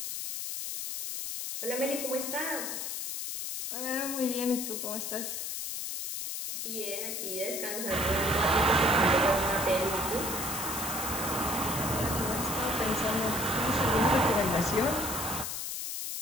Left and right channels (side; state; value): left; noise; hiss, 4 dB below the sound